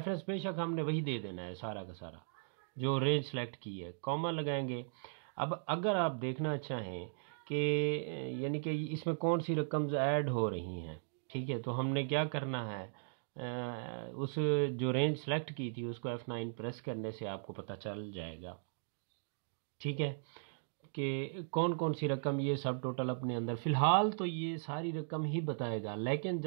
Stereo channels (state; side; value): silent; left; digital silence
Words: बेशक हमने वही दे देना है सारा का सारा, जो रेंज सेलेक्ट की है, कॉमा लगाएंगे। अब अगर आप देखना चाहें कि यानी कि इसमें कौन सी रकम्स ऐड हो रही हैं, ठीक है, तो हमने क्या करना है, उस जो रेंज सेलेक्ट की थी उसको F9 प्रेस करने से आपको पता चल जाएगा, ठीक है, कि कौन कौन सी रकम ये सब टोटल अपने अंदर। फ़िलहाल तो ये सारी रकम ही बताएगा, लेकिन